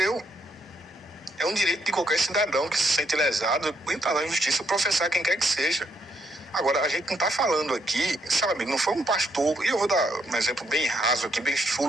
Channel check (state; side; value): normal; both; correlation 0.74